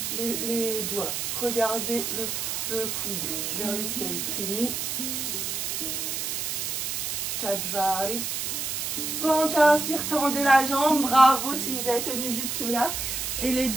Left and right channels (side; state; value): right; noise; hiss, 2 dB below the sound